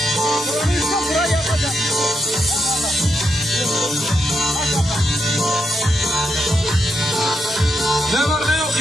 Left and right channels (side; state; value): both; normal; correlation 0.82